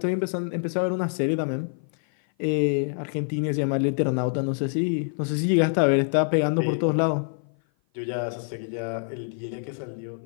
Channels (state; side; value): silent; right; 55 dB below the other